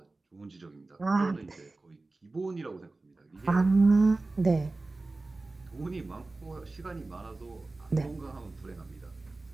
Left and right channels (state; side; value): quieter; left; 3.3 dB